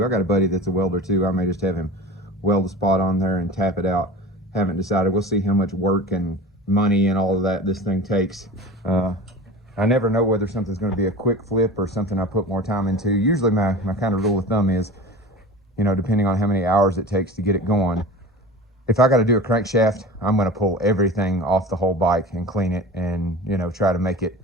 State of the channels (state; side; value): normal; both; correlation 0.34